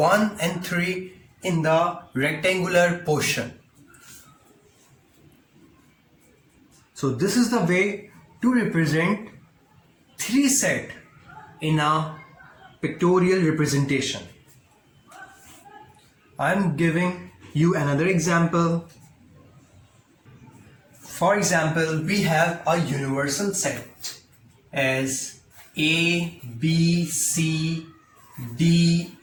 and 3 in the rectangular portion. So this is the way to represent 3 set in a pictorial representation. I'm giving you another example. For example, we have a universal set as A, B, C, D,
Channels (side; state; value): both; identical; correlation 1.00